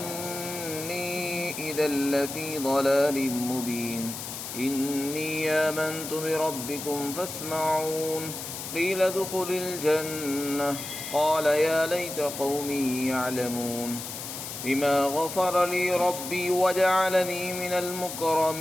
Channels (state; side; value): noise; left; hiss, 8 dB below the sound